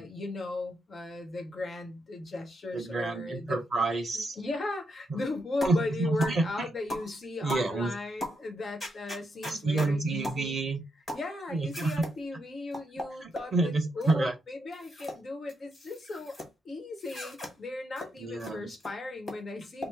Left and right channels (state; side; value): normal; both; correlation 0.81